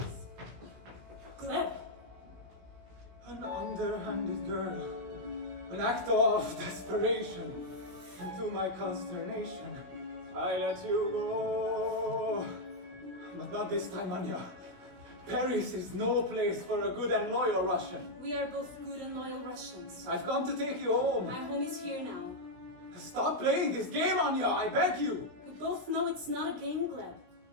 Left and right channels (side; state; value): left; late; 16 ms